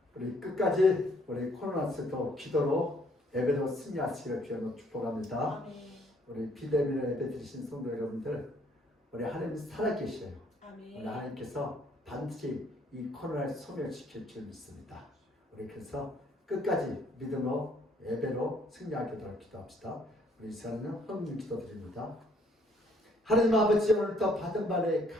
우리 끝까지 우리 코로나스도 기도로 예배로 승리하시기를 주님으로 축복합니다. 아멘. 우리 비대면으로 예배 드리신 성도 여러분들, 우리 하나님 살아계셔요. 우리 아멘. 하나님께서 반드시 이 코로나를 소멸시킬 줄 믿습니다. 우리 그래서 끝까지 믿음으로 예배로 승리하도록 기도합시다. 우리 이 시간에는 헌금 기도드립니다. 하나님 아버지, 오늘도 받은 바에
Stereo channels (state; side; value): normal; both; correlation 0.64